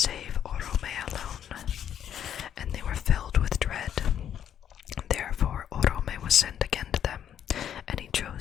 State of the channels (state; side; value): quieter; right; 9.6 dB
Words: Orome alone, and they were filled with dread. Therefore Orome was sent again to them, and he